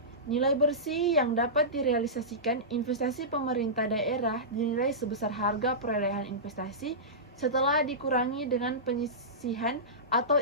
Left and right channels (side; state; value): both; normal; correlation -0.18